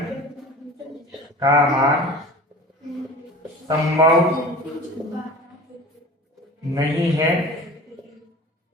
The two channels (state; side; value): normal; both; correlation 0.38